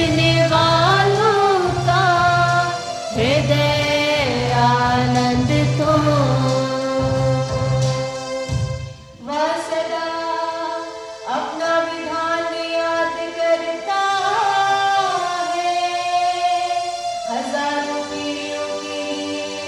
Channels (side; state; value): both; identical; correlation 1.00